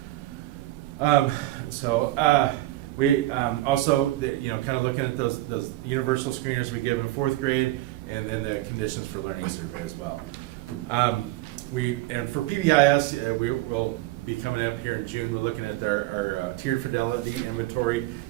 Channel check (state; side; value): quieter; left; 16.9 dB